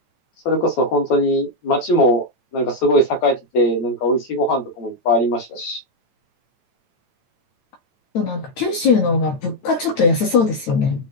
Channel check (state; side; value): late; right; 8.9 ms